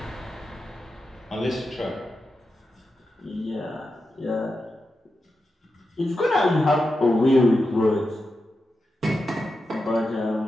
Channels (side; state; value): both; normal; correlation 0.89